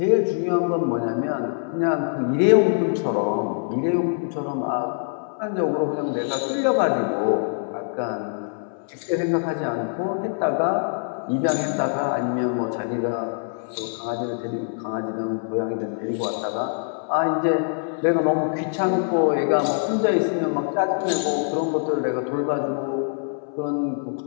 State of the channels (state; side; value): silent; right; 63 dB below the other